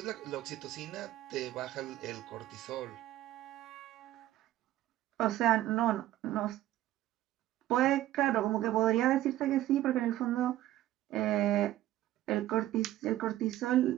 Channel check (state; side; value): quieter; left; 14.1 dB